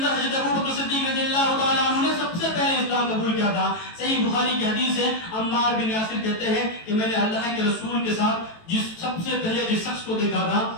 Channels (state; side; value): late; right; 18 ms